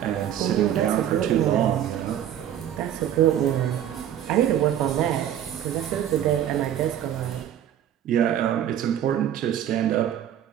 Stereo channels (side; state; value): left; quieter; 10.7 dB